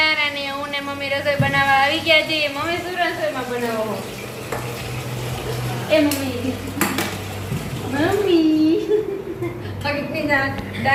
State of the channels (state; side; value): identical; both; correlation 1.00